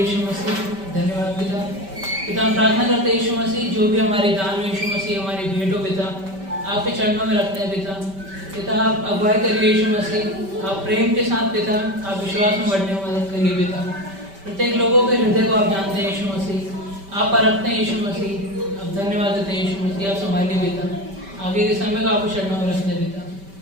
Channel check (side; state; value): left; late; 5.2 ms